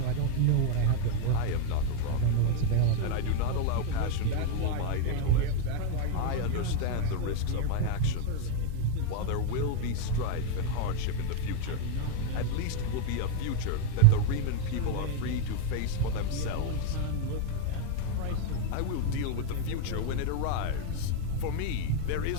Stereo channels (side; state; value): both; different; correlation 0.00